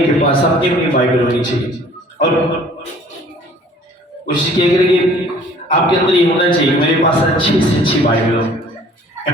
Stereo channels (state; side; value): normal; both; correlation 0.53